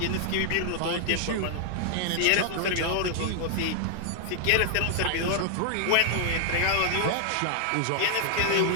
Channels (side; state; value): both; different; correlation -0.01